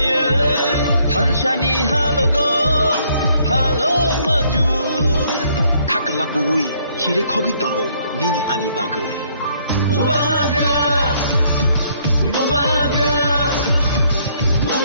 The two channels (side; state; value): both; inverted; correlation -0.66